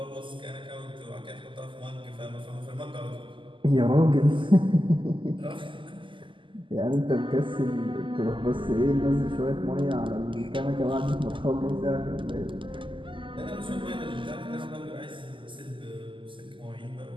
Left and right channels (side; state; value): left; late; 0.25 ms